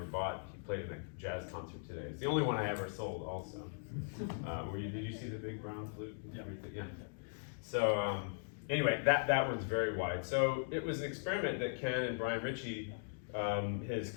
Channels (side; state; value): right; silent; digital silence